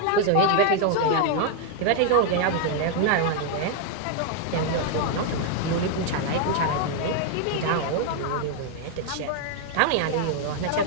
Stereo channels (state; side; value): different; both; correlation 0.00